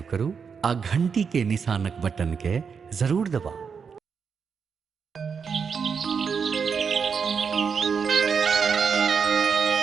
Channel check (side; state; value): left; quieter; 6.1 dB